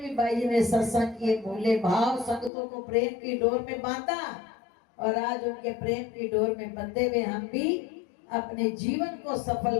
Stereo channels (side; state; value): right; drops out; at 2.5 s